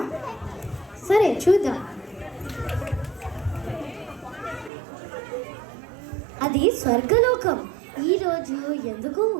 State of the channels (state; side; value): drops out; left; at 4.7 s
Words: సరే చూద్దాం. అది స్వర్గలోకం. ఈరోజు ఎందుకు